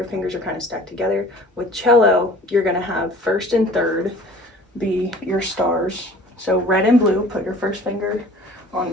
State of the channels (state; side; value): normal; both; correlation 0.47